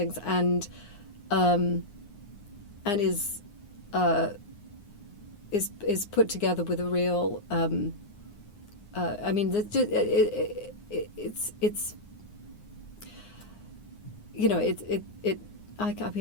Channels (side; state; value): right; late; 9.7 ms